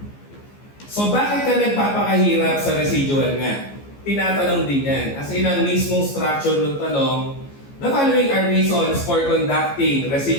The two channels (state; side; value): late; right; 15 ms